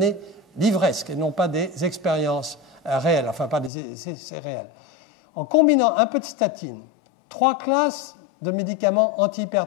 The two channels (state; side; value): drops out; right; at 3.7 s